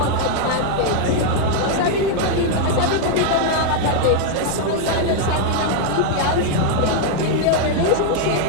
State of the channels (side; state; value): both; different; correlation 0.00